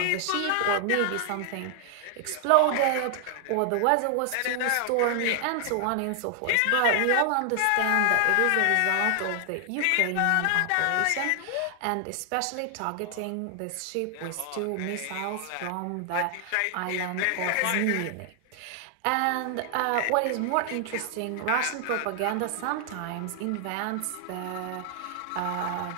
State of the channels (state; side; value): different; both; correlation 0.00